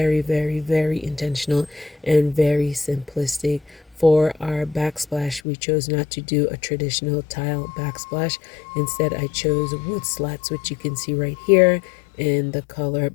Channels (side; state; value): right; drops out; at 5.4 s